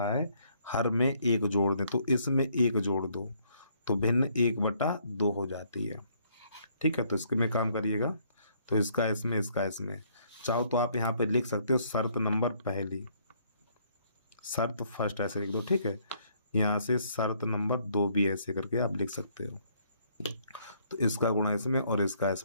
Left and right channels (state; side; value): inverted; both; correlation -0.66